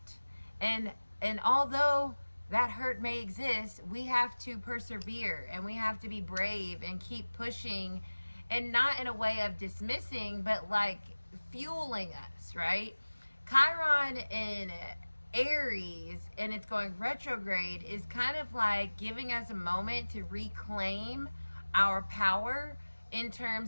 And although that hurt may exist, we have to persevere and we have to be brave and keep pushing, and not in a way of dismissing, but like fueling us, right? Chiron in Aries, and it's going retrograde, is kind of like giving us a moment to reclaim our power in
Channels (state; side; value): inverted; both; correlation -1.00